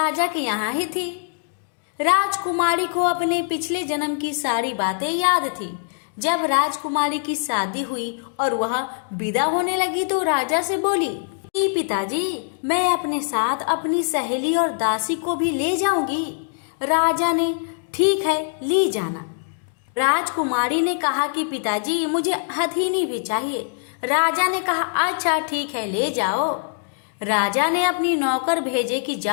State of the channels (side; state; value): right; silent; digital silence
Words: के यहाँ ही थी। राजकुमारी को अपने पिछले जन्म की सारी बातें याद थी। जब राजकुमारी की शादी हुई और वह विदा होने लगी तो राजा से बोली कि पिताजी, मैं अपने साथ अपनी सहेली और दासी को भी ले जाऊंगी। राजा ने ठीक है, ले जाना। राजकुमारी ने कहा कि पिताजी, मुझे हथिनी भी चाहिए। राजा ने कहा अच्छा ठीक है, ले जाओ। राजा ने अपनी नौकर भेजे कि